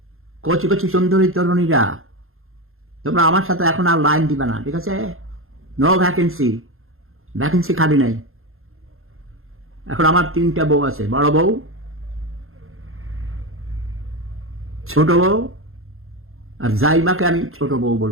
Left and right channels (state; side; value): late; left; 0.61 ms